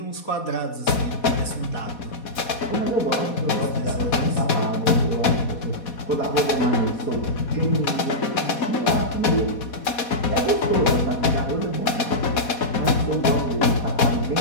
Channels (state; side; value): late; right; 4.2 ms